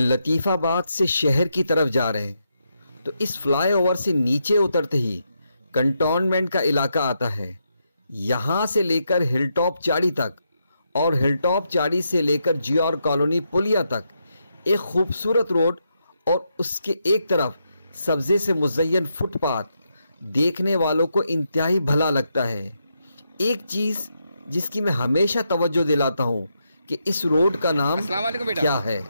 آباد سے شہر کی طرف جا رہے ہیں تو اس فلائی اوور سے نیچے اترتے ہی کنٹونمنٹ کا علاقہ آتا ہے. یہاں سے لے کر ہل ٹاپ چاڑی تک اور ہل ٹاپ چاڑی سے لے کر جی آر کالونی پلیا تک ایک خوبصورت روڈ اور اس کے ایک طرف سبزے سے مزین فٹ پاتھ دیکھنے والوں کو انتہائی بھلا لگتا ہے. ایک چیز جس کی میں ہمیشہ توجہ دلاتا ہوں کہ اس روڈ کا نام السلام علیکم بیٹا. کیا ہے.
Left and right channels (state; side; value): inverted; both; correlation -0.82